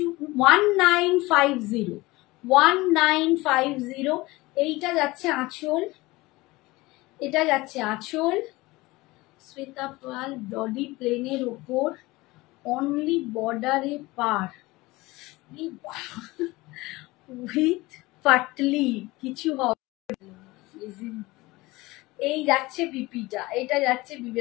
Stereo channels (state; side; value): quieter; right; 20.8 dB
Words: 1950, 1950। এইটা যাচ্ছে আঁচল, এটা যাচ্ছে আঁচল, শ্বেতা পাল বডি প্লেনের ওপর, অনলি বর্ডারে পার উইথ পাটলি, কিছু হবে। এই যাচ্ছে বিপিটা, এটা যাচ্ছে